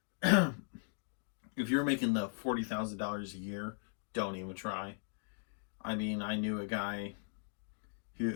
if you're making the $40,000 a year, don't even try. I mean, I knew a guy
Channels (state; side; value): silent; right; 52 dB below the other